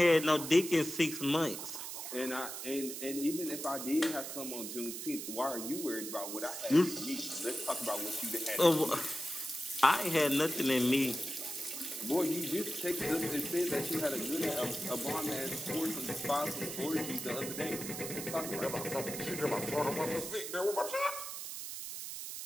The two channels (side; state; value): right; noise; hiss, 7 dB below the sound